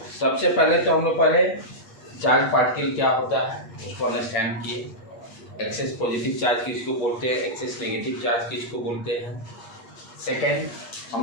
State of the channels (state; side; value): late; right; 8.5 ms